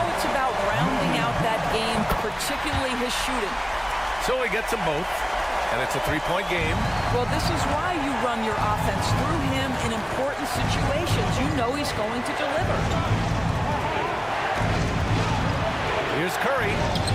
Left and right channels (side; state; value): both; identical; correlation 1.00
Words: it's about rounding out that game, particularly his shooting. So he gets them both, and it's a 3-point game. Well, this is why you run your offense through him in important situations. You know he's going to deliver. Here's Curry.